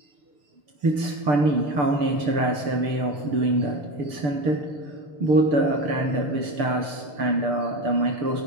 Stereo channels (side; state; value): left; late; 6.8 ms